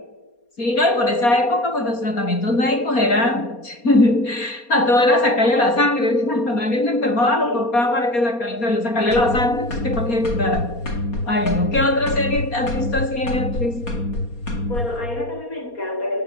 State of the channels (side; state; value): right; late; 4.2 ms